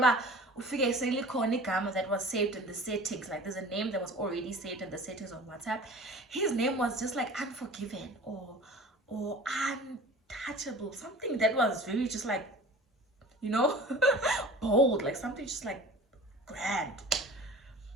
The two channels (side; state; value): both; normal; correlation 0.41